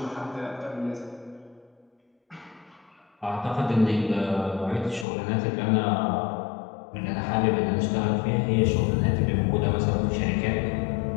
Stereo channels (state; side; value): drops out; right; at 5.1 s